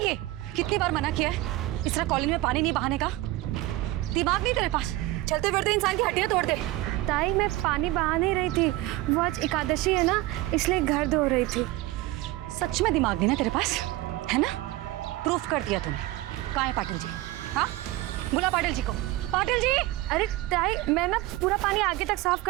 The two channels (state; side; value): quieter; left; 17.6 dB